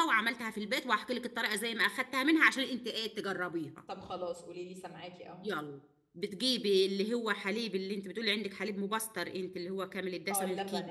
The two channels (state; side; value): identical; both; correlation 1.00